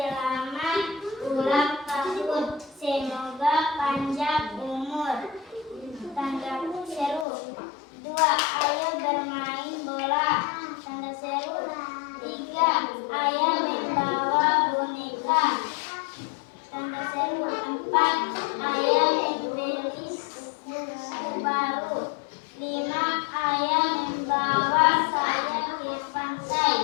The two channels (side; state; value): right; drops out; at 7.2 s